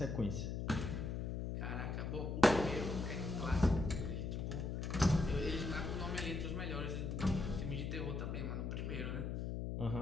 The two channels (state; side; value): noise; left; hum, 2 dB below the sound